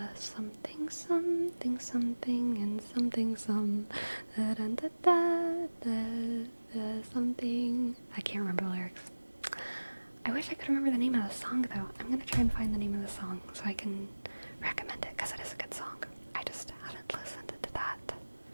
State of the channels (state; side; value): inverted; both; correlation -1.00